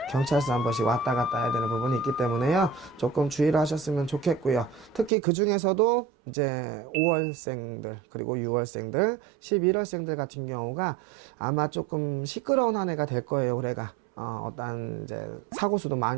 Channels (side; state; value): left; drops out; at 5.1 s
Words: 경찰서 한 번씩 왔다 갔다 해야 되는 부분이 있기 때문에요. 조금 주의를 하셨으면 좋겠고요. 특히 그 중에서도 이제 5월생들, 그리고 6월생들, 11월생들 같은 경우가 아마 조금 시끄러운 한 해가 될 거예요, 올해가. 어떤 이제 사고수도